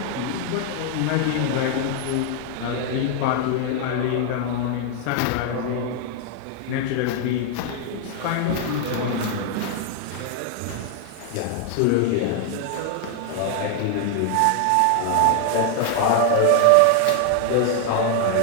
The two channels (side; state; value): both; different; correlation 0.00